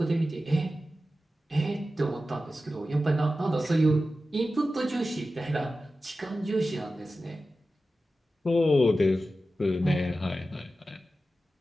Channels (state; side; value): normal; both; correlation 0.93